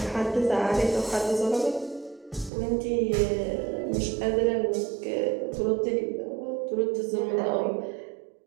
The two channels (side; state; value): left; drops out; at 2.5 s